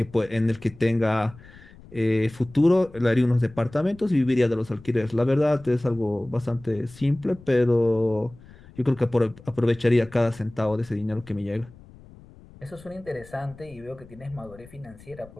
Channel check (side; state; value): left; noise; rumble, 22 dB below the sound